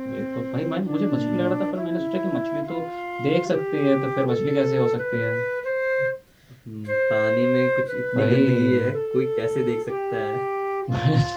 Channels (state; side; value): identical; both; correlation 1.00